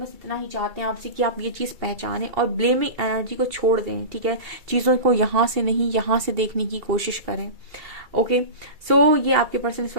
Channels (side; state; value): left; late; 2.3 ms